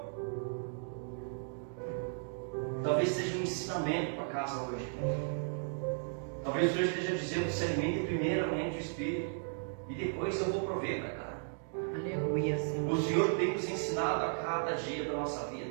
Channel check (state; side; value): silent; left; digital silence